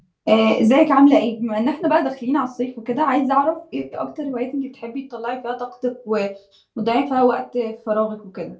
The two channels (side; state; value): both; identical; correlation 1.00